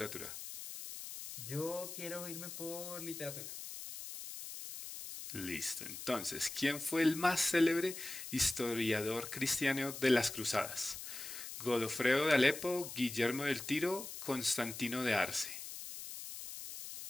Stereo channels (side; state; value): left; noise; hiss, 9 dB below the sound